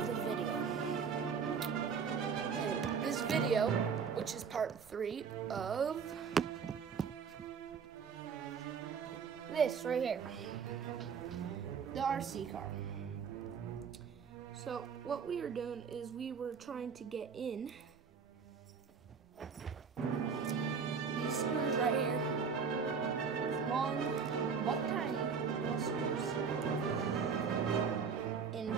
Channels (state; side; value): quieter; left; 6.1 dB